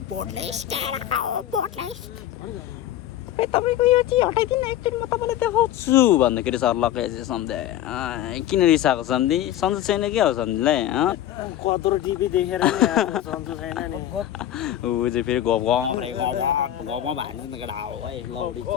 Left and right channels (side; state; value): right; quieter; 12.1 dB